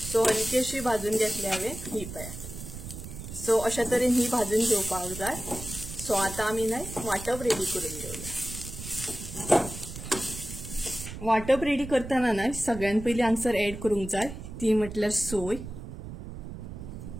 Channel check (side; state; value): right; noise; rumble, 10 dB below the sound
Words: सो हलकी अशी भाजून घेतली हांवें. ही पळयात. सो अशा तरेन ही भाजून घेवपाक जाय. सो आतां आमी न्हय वांटप रेडी करून घेवया. वांटप रेडी करतना न्हय सगळ्यात पयलीं हांगसर ऍड करूंक जाय ती म्हटल्यार सोय.